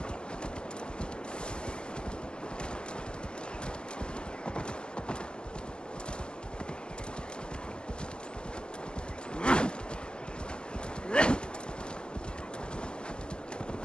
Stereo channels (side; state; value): right; late; 0.050 ms